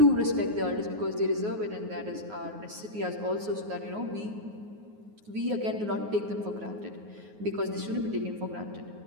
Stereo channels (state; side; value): late; left; 9.5 ms